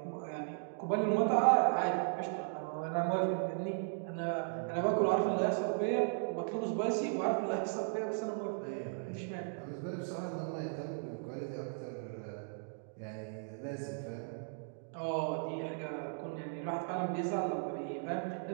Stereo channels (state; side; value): silent; left; digital silence